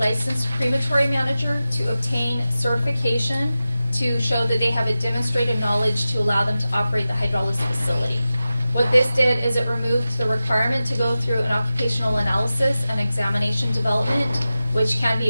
crematory manager to obtain certification to show that they have a demonstrated knowledge to allow them to operate the hydrolysis facility. What this did is it removed the requirement to go through an occupational analysis and examination development, which can be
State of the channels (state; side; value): inverted; both; correlation -0.94